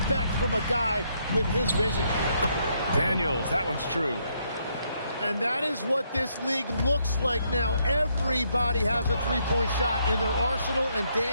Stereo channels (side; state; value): both; inverted; correlation -0.74